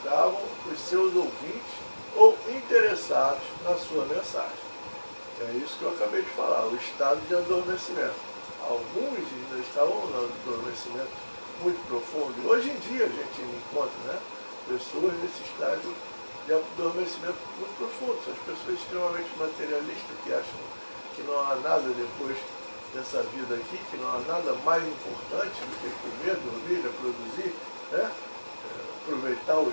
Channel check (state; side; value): inverted; both; correlation -1.00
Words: os seus ouvintes ou interessados na sua mensagem. É isso que eu acabei de falar, o estado de adormecimento. Alguns ainda estavam no adormecimento muito profundo, e hoje em dia a gente encontra, né, pessoas nesse estágio de adormecimento muito profundo. São as pessoas extremamente materialistas, que acham que não há nada depois dessa vida aqui, que não há nada mais importante do que comer, dormir, reproduzir, né? Aproveitar